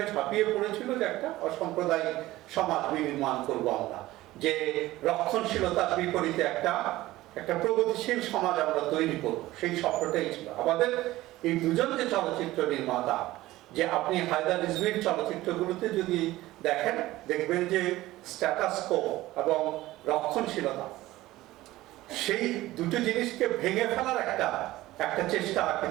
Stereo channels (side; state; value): left; quieter; 17.0 dB